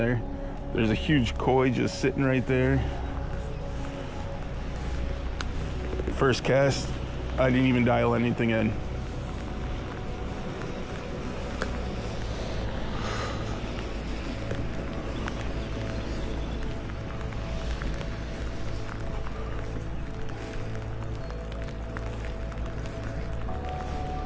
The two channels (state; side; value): identical; both; correlation 1.00